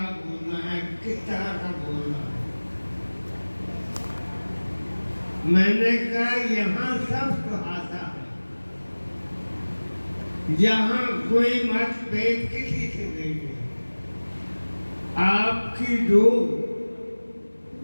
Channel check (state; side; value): inverted; both; correlation -1.00